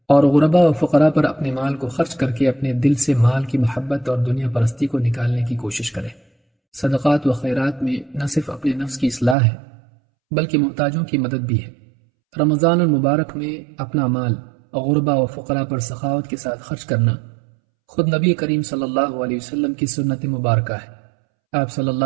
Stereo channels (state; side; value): drops out; left; at 9.3 s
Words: اور غربا و فقراء پر اپنے مال کو خرچ کر کے اپنے دل سے مال کی محبت اور دنیا پرستی کو نکالنے کی کوشش کرے۔ صدقات و خیرات میں نہ صرف اپنے نفس کی اصلاح ہے بلکہ محتاجوں کی مدد بھی ہے۔ رمضان المبارک میں اپنا مال غربا و فقراء پر سخاوت کے ساتھ خرچ کرنا خود نبی کریم صلی اللہ علیہ وسلم کی سنت مبارکہ ہے۔ آپ صلی